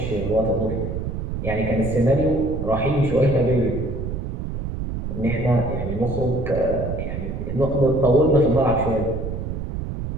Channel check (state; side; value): noise; right; rumble, 5 dB below the sound